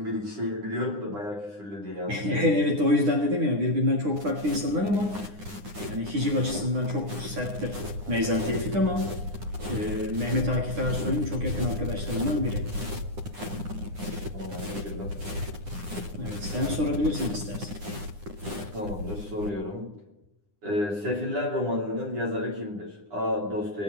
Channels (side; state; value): left; late; 9.9 ms